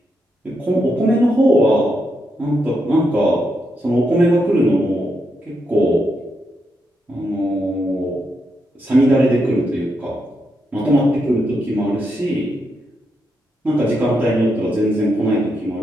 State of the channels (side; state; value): both; normal; correlation 0.82